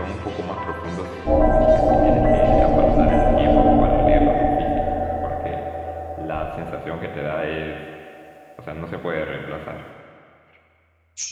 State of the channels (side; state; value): both; identical; correlation 1.00